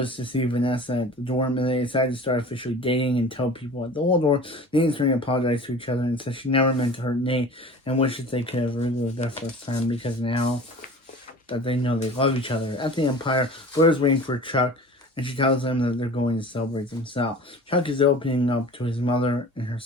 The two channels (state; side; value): normal; both; correlation 0.41